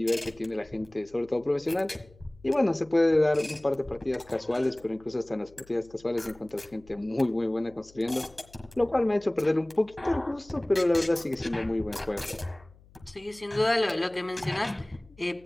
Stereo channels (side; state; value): left; noise; hum, 26 dB below the sound